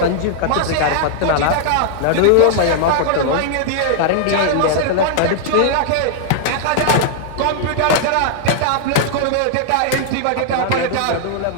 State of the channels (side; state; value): both; different; correlation -0.01